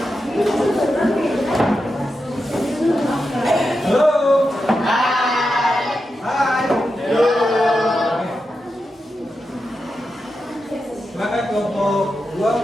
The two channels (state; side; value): normal; both; correlation 0.88